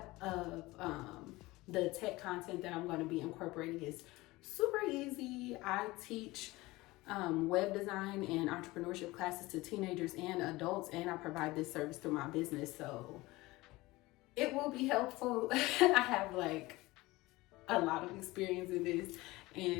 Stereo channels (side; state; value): right; quieter; 20.3 dB